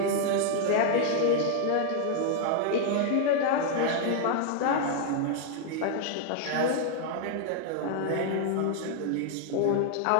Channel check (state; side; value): different; both; correlation 0.00